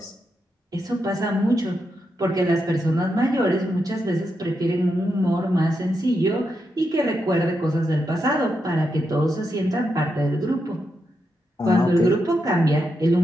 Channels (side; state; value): both; normal; correlation 0.84